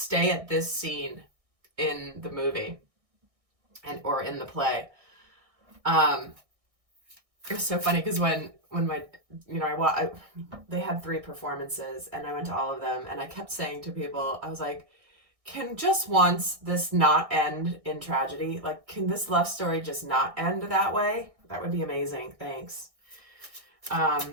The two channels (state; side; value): late; left; 1.6 ms